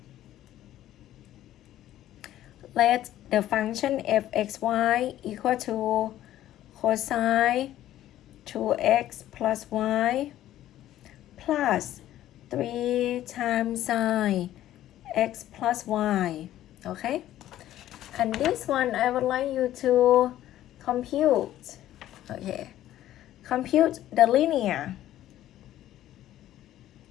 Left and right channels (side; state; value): right; quieter; 13.1 dB